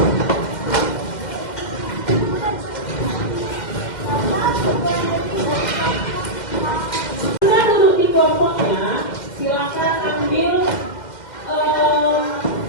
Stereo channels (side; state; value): right; late; 2.1 ms